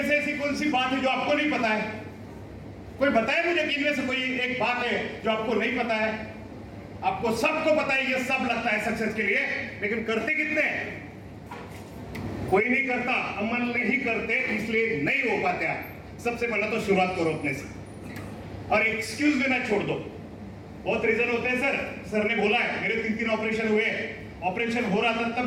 से ऐसी कौन सी बात है जो आपको नहीं पता है? कोई बताए मुझे कि इनमें से कोई एक बात है जो आपको नहीं पता है? आपको सबको पता है, ये सब लगता है सक्सेस के लिए, लेकिन करते कितने हैं? कोई नहीं करता, अमल नहीं करते, इसलिए नहीं हो पाते। सबसे पहले तो शुरुआत करो अपने से, और एक्सक्यूज देना छोड़ दो। बहुत रीजन होते हैं, सर ने बोला है, मेरे 3 ऑपरेशन हुए, ऑपरेशन हो रहा था तब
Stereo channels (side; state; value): both; identical; correlation 1.00